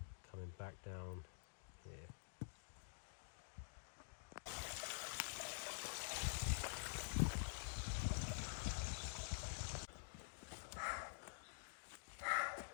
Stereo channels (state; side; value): silent; right; digital silence